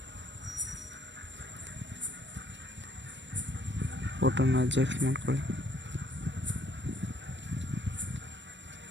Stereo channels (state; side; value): late; left; 0.53 ms